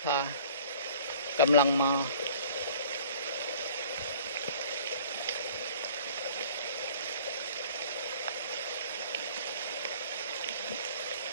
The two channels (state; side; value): inverted; both; correlation -0.49